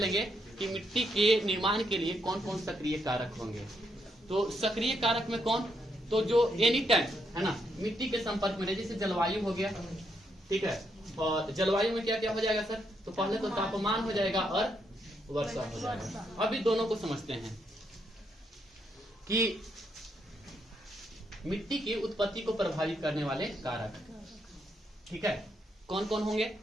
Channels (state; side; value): normal; both; correlation 0.77